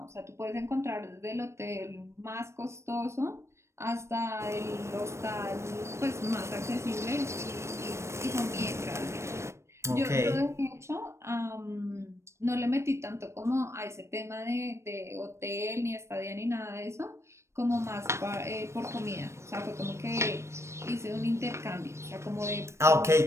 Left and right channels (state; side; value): late; left; 0.13 ms